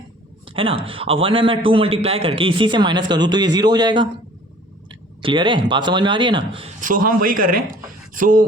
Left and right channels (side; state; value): both; normal; correlation 0.51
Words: है ना, अब 1 में मैं 2 मल्टीप्लाई करके इसी से माइनस कर दूँ तो ये 0 हो जाएगा। क्लियर है, बात समझ में आ रही है ना। सो हम वही कर रहे हैं।